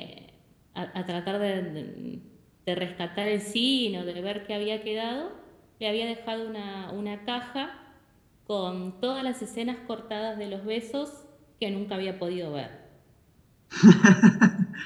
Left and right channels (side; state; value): both; identical; correlation 1.00